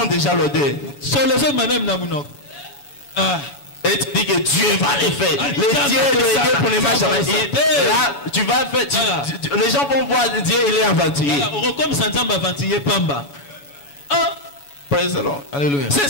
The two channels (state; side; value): late; right; 7.1 ms